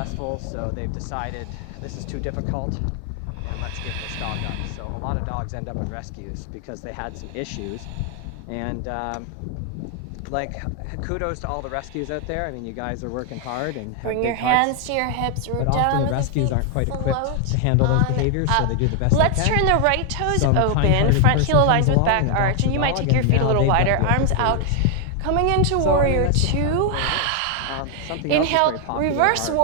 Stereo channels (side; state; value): both; different; correlation 0.00